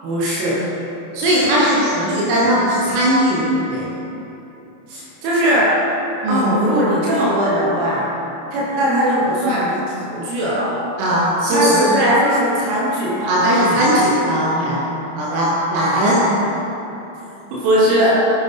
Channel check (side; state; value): left; late; 30 ms